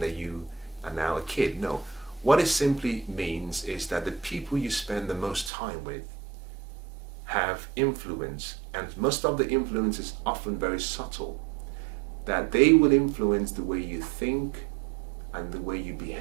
you are now a kid. No. What it simply means is that the people you spend the most time with have influence, and most of the influence is often very subtle, that they will influence the way you think and the way you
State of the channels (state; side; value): drops out; left; at 5.5 s